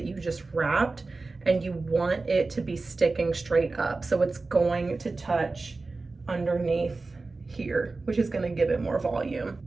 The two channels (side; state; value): left; quieter; 3.7 dB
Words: you just wrapped, and you want it to be sticking straight up. So it's going to touch underneath here, which is gonna give it more volume.